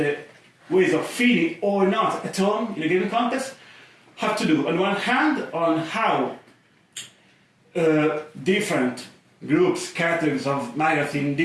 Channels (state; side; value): identical; both; correlation 1.00